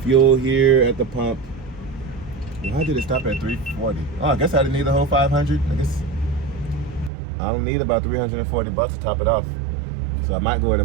fuel here at the pump. Why did it stop at 340? Oh, I guess I didn't need the whole 500. I guess I don't need about $340 to top it off. So I might go ahead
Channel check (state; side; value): drops out; left; at 7.1 s